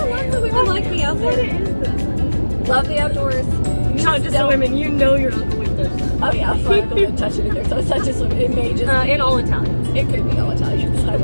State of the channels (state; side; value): inverted; both; correlation -1.00